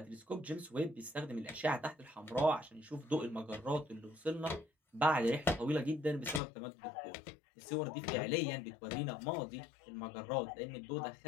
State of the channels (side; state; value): right; drops out; at 6.4 s